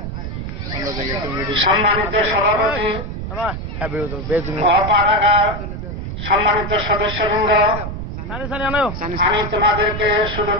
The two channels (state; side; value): noise; right; rumble, 6 dB below the sound